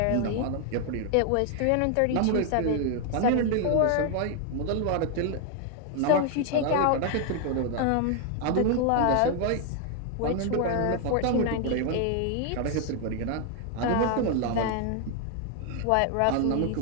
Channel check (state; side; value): different; both; correlation 0.00